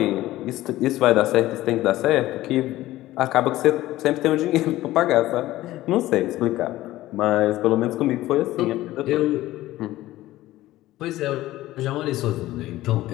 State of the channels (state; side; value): quieter; right; 16.1 dB